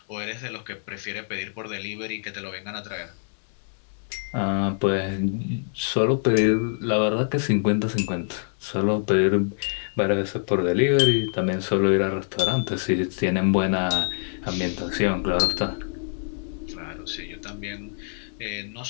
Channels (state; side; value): silent; right; digital silence